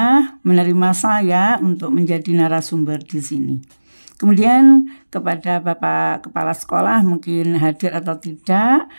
menerima saya untuk menjadi narasumber di sini. Kemudian kepada Bapak Kepala Sekolah mungkin hadir atau tidak,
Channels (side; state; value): both; inverted; correlation -1.00